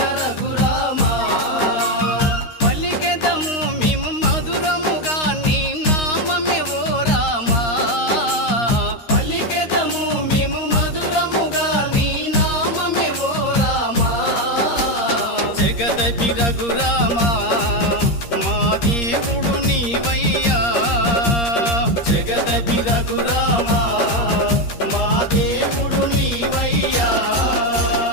రఘురామా పలికెదము మేము మధురముగా నీ నామమే ఓ రామా పలికెదము మేము మధురముగా నీ నామమే ఓ రామా జగదపి రఘురామా మా దేవుడు నీవయ్యా జగదపి రఘురామా మా దేవుడు నీవయ్యా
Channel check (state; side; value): late; right; 13 ms